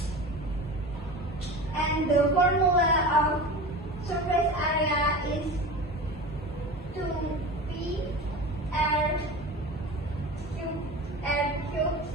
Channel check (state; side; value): normal; both; correlation 0.32